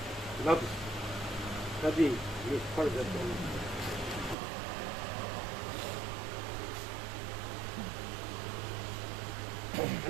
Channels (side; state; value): left; drops out; at 4.4 s